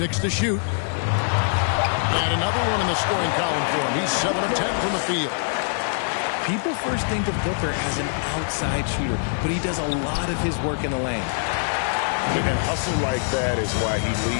to shoot. And another one in the scoring column for him. He's 7 of 10 from the field. People first think of Booker as an outside shooter, but he does a lot of his work in the lane. And hustle like that is why he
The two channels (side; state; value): right; silent; digital silence